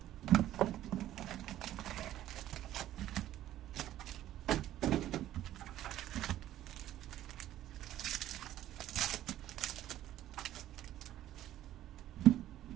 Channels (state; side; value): quieter; left; 13.1 dB